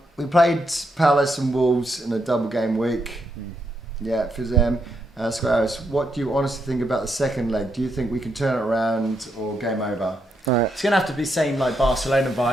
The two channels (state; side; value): normal; both; correlation 0.79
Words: We played Palace and Wolves in a double game week. Yeah, for them. Squares, what do you honestly think about the second leg? Do you think we can turn it around or game over? Right. It's going to have to be same like Barcelona